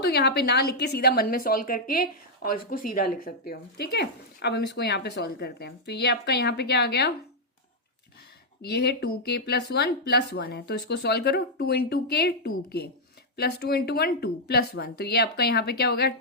यहाँ पे ना लिख के सीधा मन में सॉल्व करके और इसको सीधा लिख सकते हो, ठीक है। अब हम इसको यहाँ पे सॉल्व करते हैं, तो ये आपका यहाँ पे क्या आ गया, ये है 2k+1 + 1 है, तो इसको सॉल्व करो, 2 × k 2k प्लस 2 × 1 2 + 1, तो ये आपका यहाँ पे क्या हो गया,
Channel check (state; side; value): normal; both; correlation -0.05